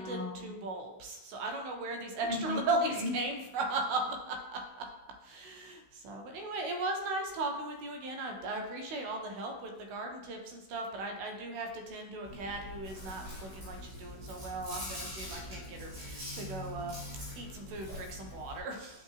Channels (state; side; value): late; left; 16 ms